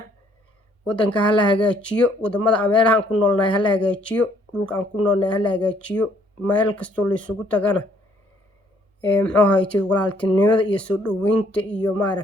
wadanka ha la hagaajiyo, wadamada meelaha aan ku noolnahay ha la hagaajiyo, dhulka aan ku noolnahay ha la hagaajiyo. meel kastoo la isugu tagana walaaltinimada iyo soo dhaweynta iyo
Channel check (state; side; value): normal; both; correlation 0.64